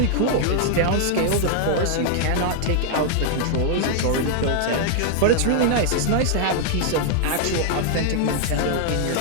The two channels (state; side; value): different; both; correlation 0.00